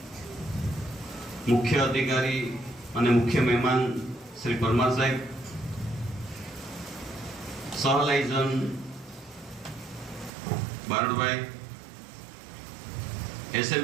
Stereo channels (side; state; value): left; drops out; at 10.3 s